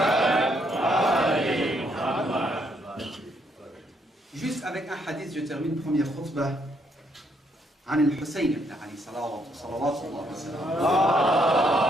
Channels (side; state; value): both; normal; correlation 0.73